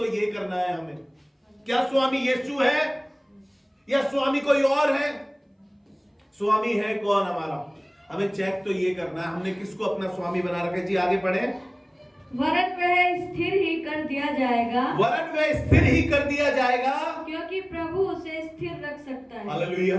ये करना है हमें। क्या स्वामी यीशु है या स्वामी कोई और है? स्वामी है कौन हमारा? हमें चेक तो ये करना है, हमने किसको अपना स्वामी बना रखा है। जी आगे पढ़े। वरन वह स्थिर ही कर दिया जाएगा, वरन वह स्थिर ही कर दिया जाएगा, क्योंकि प्रभु उसे स्थिर रख सकता है। हालेलुया।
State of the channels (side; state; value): both; identical; correlation 1.00